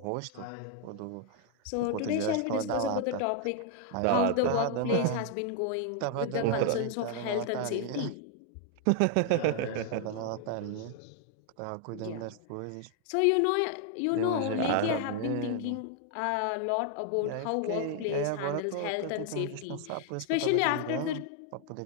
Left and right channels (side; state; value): both; different; correlation 0.00